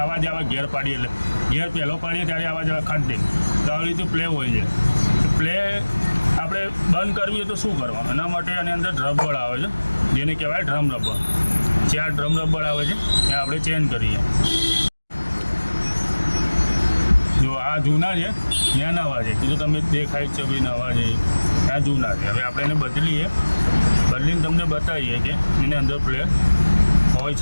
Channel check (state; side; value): inverted; both; correlation -1.00